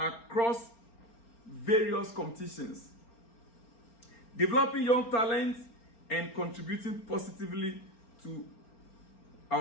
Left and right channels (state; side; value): late; right; 4.4 ms